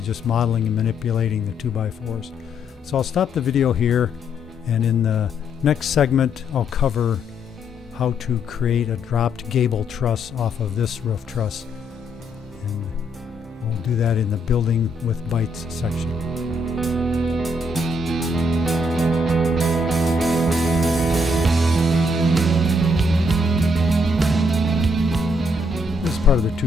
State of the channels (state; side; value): normal; both; correlation 0.73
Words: just modeling and manipulating the 2x4s. So I'll stop the video here, and in the next segment I'll cover how to create a dropped gable truss off of this roof truss. And we'll do that in the Building with Bytes section. Part of the